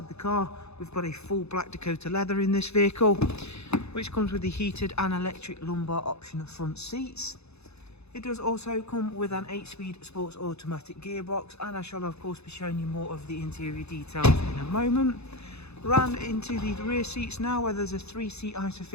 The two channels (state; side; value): late; right; 0.80 ms